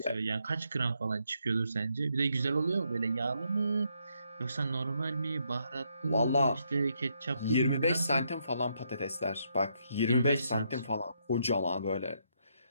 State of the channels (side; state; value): both; inverted; correlation -0.76